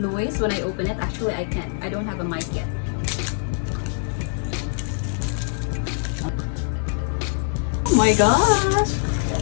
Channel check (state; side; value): silent; right; digital silence